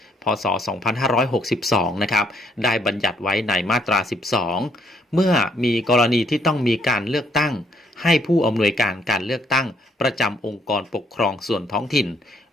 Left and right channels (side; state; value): both; normal; correlation 0.68